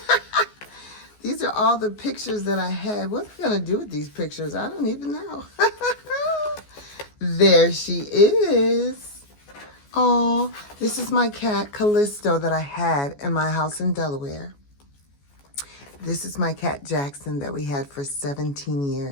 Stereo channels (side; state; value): right; late; 14 ms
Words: These are all the pictures that I had. What am I going to do with these pictures? I don't even know. There she is. Oh, this is my cat, Callisto, that I had in my house in Delaware. This is my cat, Jackson, that we had for 17